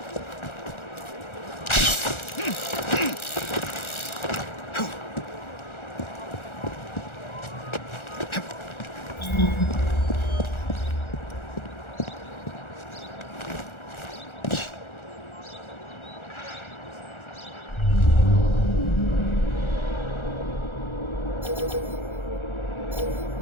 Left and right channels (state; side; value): late; right; 1.4 ms